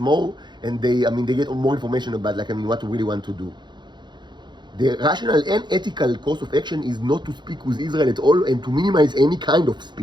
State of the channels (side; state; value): left; late; 0.22 ms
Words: and they get more information about what we really want to do. The rational and ethical course of action is not to speak with Israel at all, and to minimize any kind of